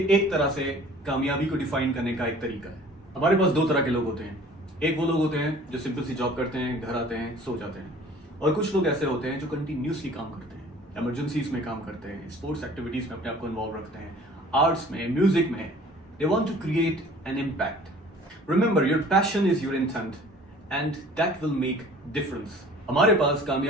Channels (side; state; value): both; normal; correlation 0.49